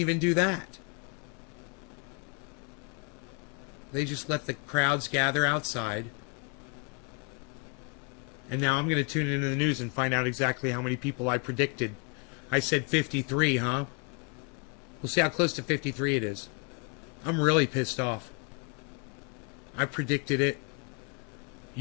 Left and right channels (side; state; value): right; quieter; 34.8 dB